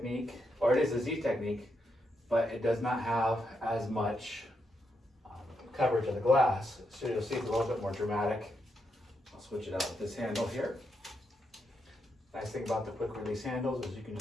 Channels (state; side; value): normal; both; correlation 0.82